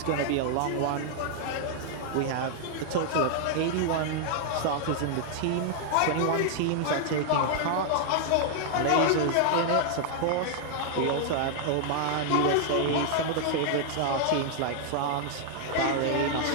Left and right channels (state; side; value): different; both; correlation 0.00